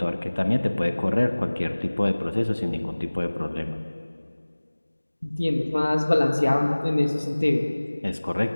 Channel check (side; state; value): both; inverted; correlation -1.00